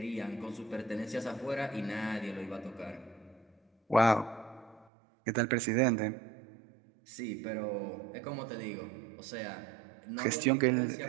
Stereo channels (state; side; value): drops out; left; at 4.9 s